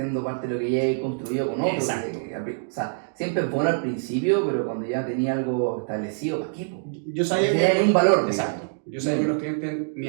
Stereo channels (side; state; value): left; silent; digital silence